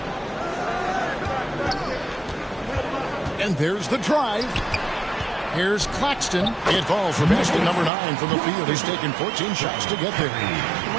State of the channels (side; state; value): left; drops out; at 7.9 s